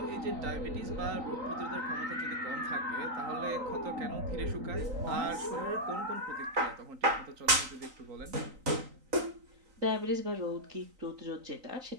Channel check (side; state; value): left; late; 3.9 ms